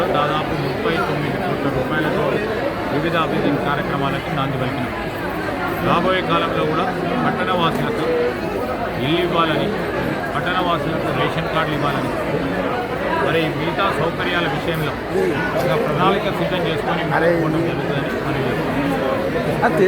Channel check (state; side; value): identical; both; correlation 1.00